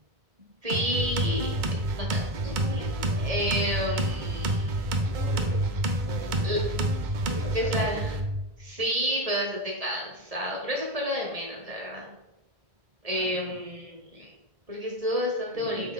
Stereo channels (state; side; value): late; left; 2.1 ms